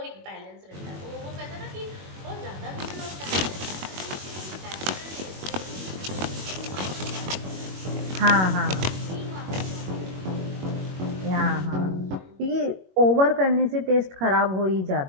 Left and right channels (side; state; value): left; late; 21 ms